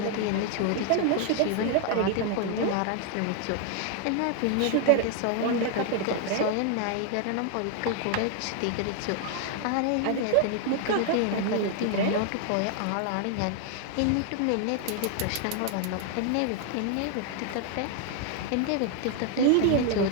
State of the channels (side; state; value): both; different; correlation 0.00